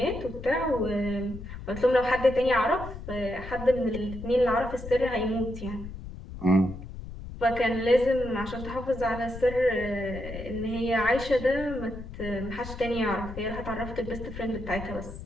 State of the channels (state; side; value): noise; left; rumble, 11 dB below the sound